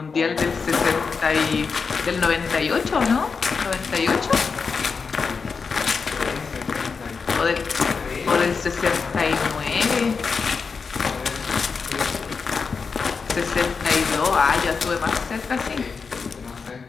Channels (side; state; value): right; quieter; 5.2 dB